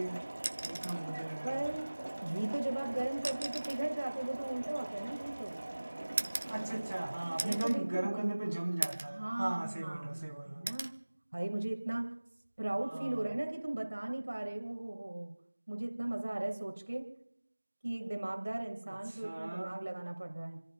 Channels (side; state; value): both; inverted; correlation -1.00